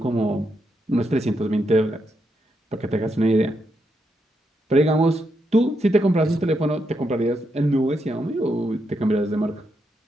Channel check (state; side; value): normal; both; correlation 0.81